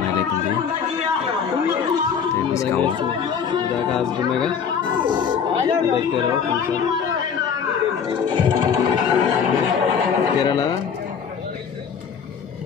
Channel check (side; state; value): right; quieter; 6.9 dB